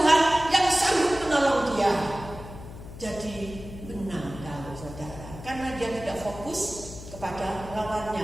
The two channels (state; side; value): noise; left; hum, 13 dB below the sound